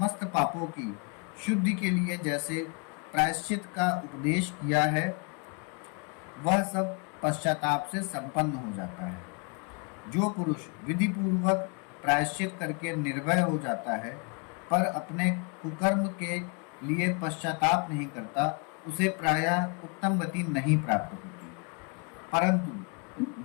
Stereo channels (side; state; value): right; quieter; 34.6 dB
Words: पापों की शुद्धि के लिए जैसे प्रायश्चित का उपदेश किया है, वह सब पश्चाताप से संपन्न हो जाता है। जो पुरुष विधि पूर्वक प्रायश्चित करके निर्भय हो जाता है पर अपने कुकर्म के लिए पश्चाताप नहीं करता, उसे प्रायः उत्तम गति नहीं प्राप्त होती। परंतु